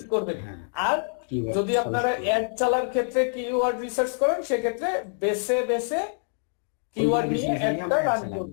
করবেন। হ্যাঁ, আর keyword যদি আপনারা suggest করবেন। অ্যাড চালার ক্ষেত্রে কিওয়ার্ড রিসার্চ করেন, সেক্ষেত্রে বেছে বেছে কিওয়ার্ড নিয়ে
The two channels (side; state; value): right; silent; 61 dB below the other